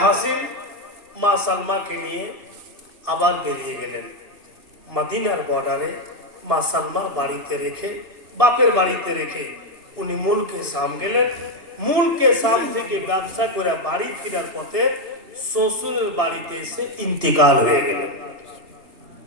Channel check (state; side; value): late; left; 2.5 ms